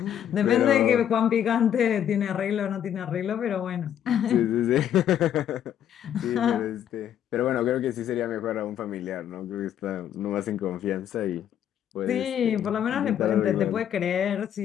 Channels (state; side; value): quieter; right; 9.9 dB